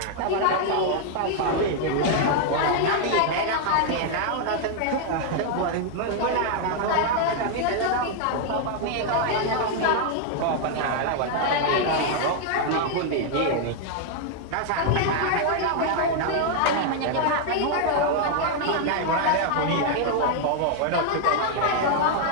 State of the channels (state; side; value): different; both; correlation 0.00